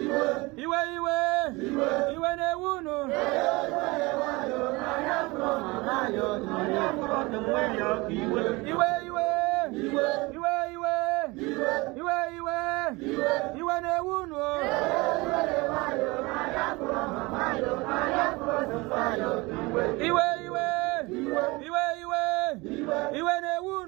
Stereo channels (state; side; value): quieter; left; 23.8 dB